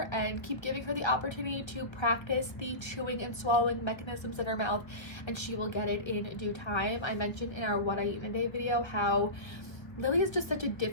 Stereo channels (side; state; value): right; late; 1.1 ms